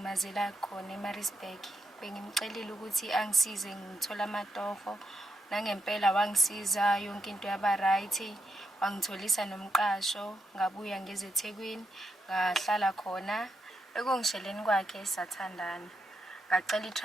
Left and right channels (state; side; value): normal; both; correlation 0.82